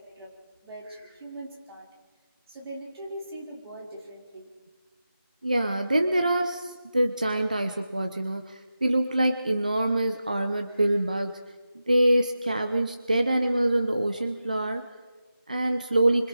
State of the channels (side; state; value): both; inverted; correlation -0.91